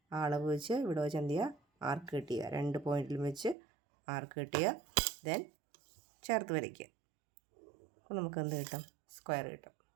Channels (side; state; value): left; drops out; at 3.6 s